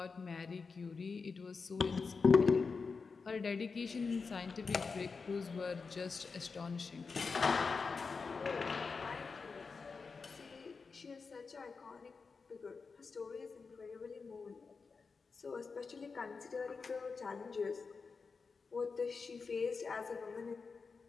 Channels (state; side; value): quieter; right; 4.8 dB